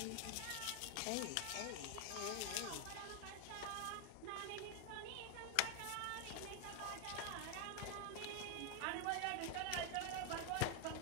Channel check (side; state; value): both; different; correlation 0.01